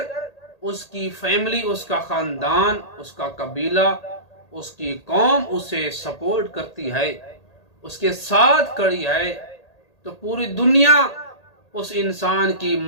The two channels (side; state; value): right; late; 1.8 ms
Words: اس کی فیملی، اس کا خاندان، اس کا قبیلہ، اس کی قوم اسے سپورٹ کرتی ہے، اس کے ساتھ کھڑی ہے، تو پوری دنیا اس انسان کی